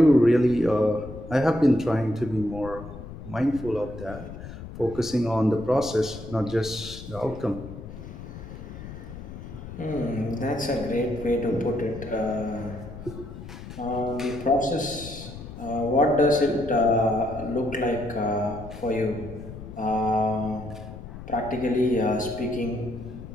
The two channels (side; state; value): left; noise; rumble, 12 dB below the sound